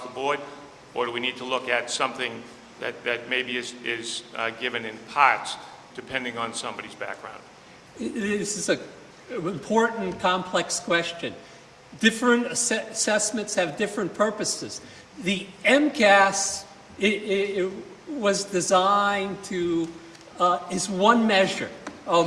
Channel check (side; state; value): both; identical; correlation 1.00